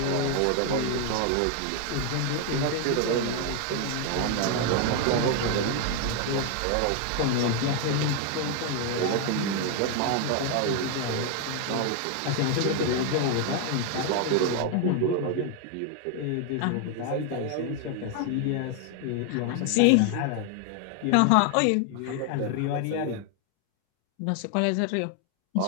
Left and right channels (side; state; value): both; different; correlation 0.01